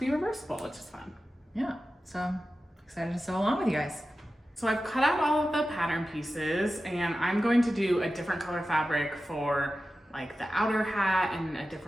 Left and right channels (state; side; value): normal; both; correlation 0.94